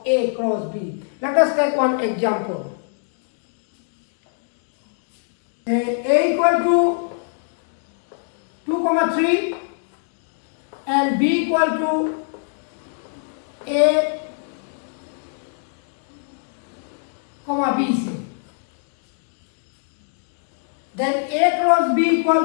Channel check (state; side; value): silent; right; 63 dB below the other